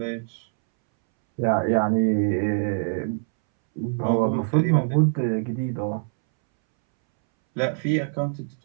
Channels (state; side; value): silent; left; 63 dB below the other